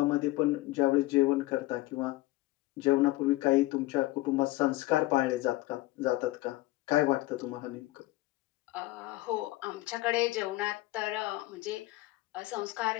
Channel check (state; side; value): quieter; right; 18.7 dB